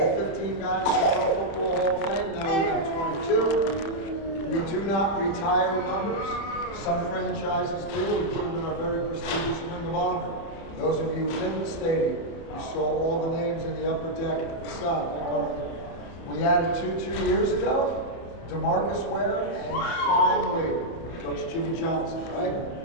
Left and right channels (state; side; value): late; right; 31 ms